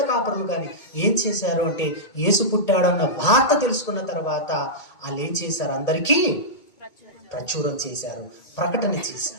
కాపరులు కానీ ఏం చేశారు అంటే, యేసు పుట్టాడన్న వార్త తెలుసుకున్న తర్వాత వాళ్ళు ఏం చేశారు? అందరికీ ప్రచురం చేశారు, ప్రకటన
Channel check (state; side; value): late; right; 2.2 ms